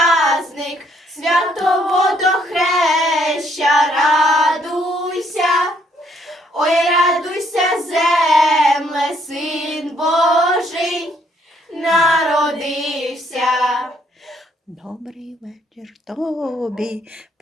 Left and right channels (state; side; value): normal; both; correlation 0.68